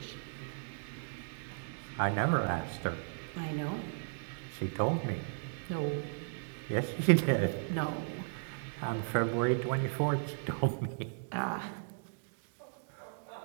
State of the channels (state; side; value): silent; left; digital silence